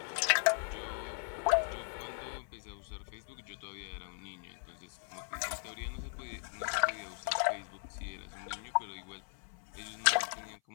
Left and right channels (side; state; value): right; silent; 53 dB below the other